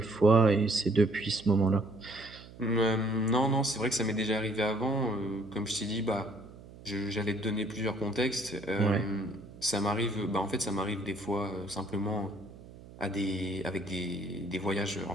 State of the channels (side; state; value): right; noise; hum, 18 dB below the sound